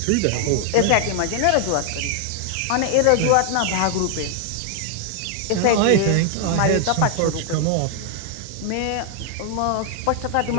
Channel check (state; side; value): different; both; correlation 0.00